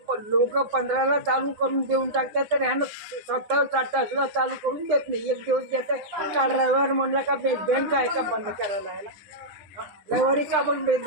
लोक 15ला चालू करून देऊन टाकतात, तर ह्यानं 27-28 ला चालू करून देत नाही. एक दिवस देतात. काल रविवार म्हणला का बँक आहे का बंद करायला यायला? रविवारी का पण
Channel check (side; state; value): left; late; 9.9 ms